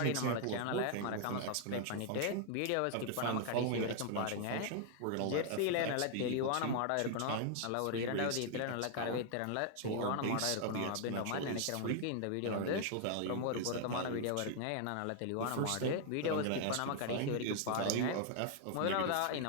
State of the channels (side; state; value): both; different; correlation 0.00